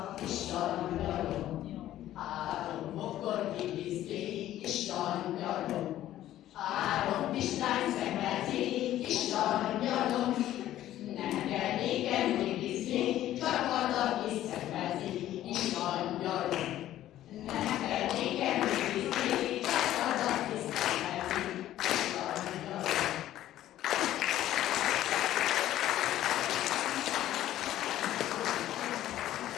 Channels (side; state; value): right; quieter; 13.2 dB